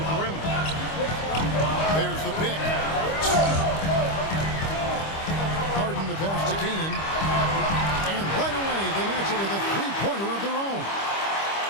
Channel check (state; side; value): late; right; 25 ms